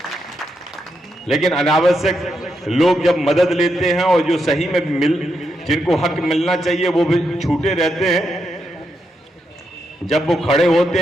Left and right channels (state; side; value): normal; both; correlation 0.83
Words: लेकिन अनावश्यक लोग जब मदद लेते हैं और जो सही में जिनको हक मिलना चाहिए वो भी छूटे रहते हैं, जब वो खड़े होते